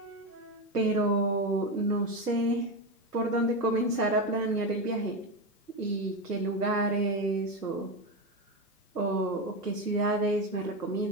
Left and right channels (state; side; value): normal; both; correlation 0.14